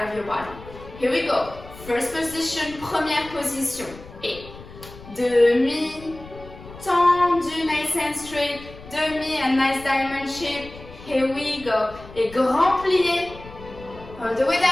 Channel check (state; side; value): noise; left; rumble, 17 dB below the sound